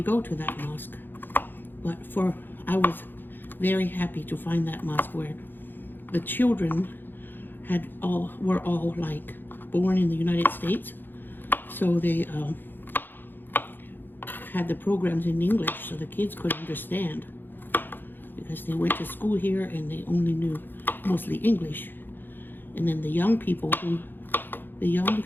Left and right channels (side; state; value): right; late; 0.094 ms